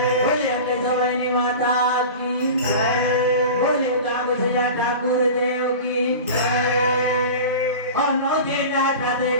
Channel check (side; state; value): both; inverted; correlation -0.33